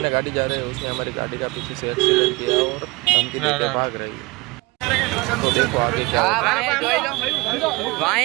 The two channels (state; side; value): quieter; left; 24.3 dB